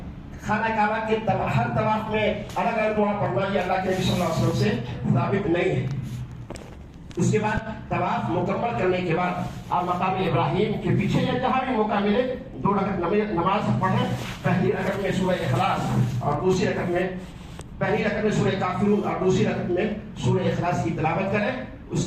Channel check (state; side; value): identical; both; correlation 1.00